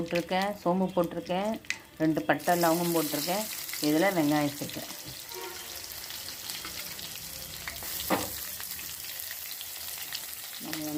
சோம்பு போட்டிருக்கேன், 2 பட்டை லவங்கம் போட்டிருக்கேன். இதில் வெங்காயம் சேர்க்கேன். நம்ம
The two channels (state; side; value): identical; both; correlation 1.00